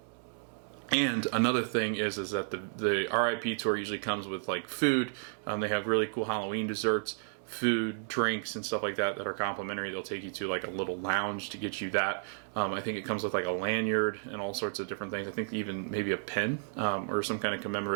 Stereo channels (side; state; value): left; silent; digital silence